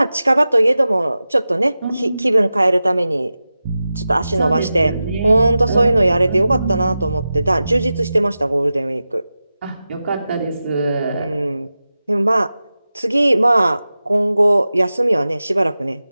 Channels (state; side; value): inverted; both; correlation -0.94